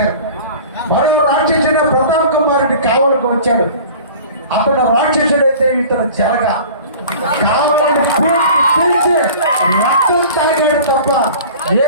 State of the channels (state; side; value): inverted; both; correlation -0.42